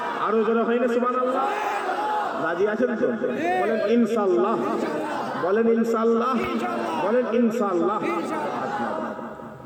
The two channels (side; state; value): both; identical; correlation 1.00